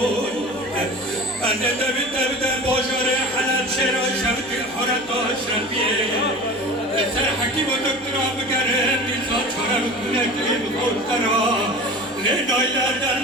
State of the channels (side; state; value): right; noise; hum, 27 dB below the sound